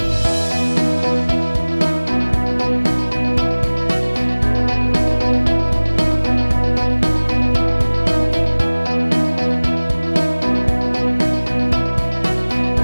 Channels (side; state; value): both; inverted; correlation -1.00